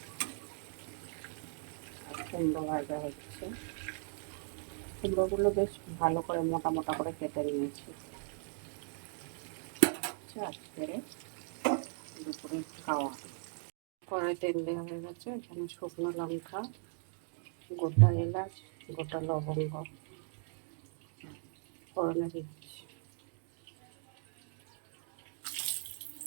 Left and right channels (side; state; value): left; silent; 52 dB below the other